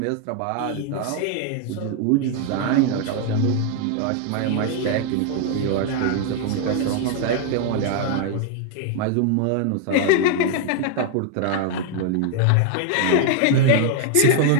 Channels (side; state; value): both; different; correlation 0.00